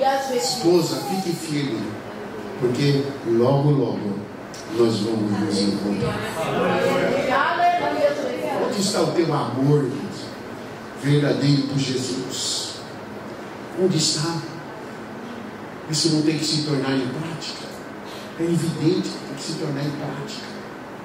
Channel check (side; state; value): both; identical; correlation 1.00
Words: esposa, fique firme, porque logo, logo nós vamos nos encontrar. Onde está o teu amor, irmãos, verdadeiro por Jesus? Onde está? Isso não tem que se tornar em prática. É evidente que tem que se tornar em prática.